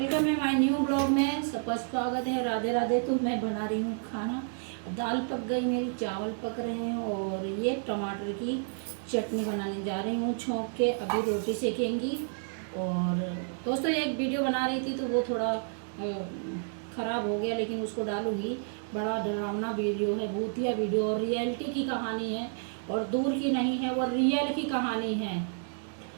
है my new blog में। सबका स्वागत है। राधे राधे। तो मैं बना रही हूँ खाना। दाल पक गई मेरी, चावल पक रहे हैं और ये टमाटर की चटनी बनाने जा रही हूँ छौंक के। अभी रोटी सेकेंगी। और दोस्तों एक वीडियो बना रही थी तो वो थोड़ा ख़राब हो गया, लेकिन उसको डालूँगी। बड़ा डरावना वीडियो है, भूतिया वीडियो, और रियलिटी की कहानी है और दूर की नहीं है, वो रियल की कहानी है।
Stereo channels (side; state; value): left; silent; digital silence